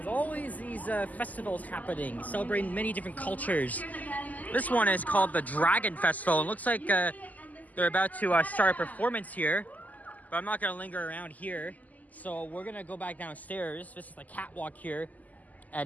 always these festivals happening, celebrating many different cultures. This one is called the Dragon Festival. It looks like they're about to start a performance here, but I'm not going to linger around here. So we're going to go back downstairs. This is the catwalk here at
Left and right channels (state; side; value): late; right; 0.079 ms